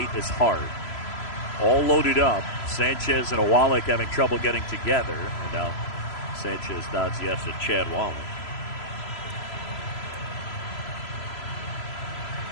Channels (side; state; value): right; late; 3.0 ms